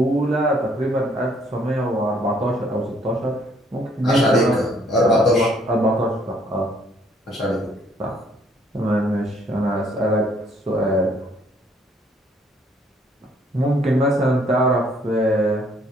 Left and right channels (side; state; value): both; normal; correlation 0.64